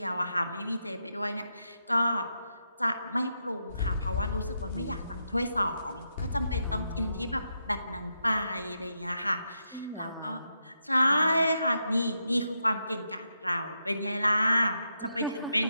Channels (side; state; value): both; inverted; correlation -0.83